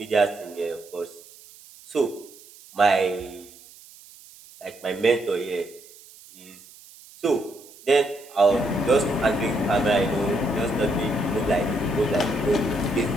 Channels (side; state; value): right; noise; hiss, 22 dB below the sound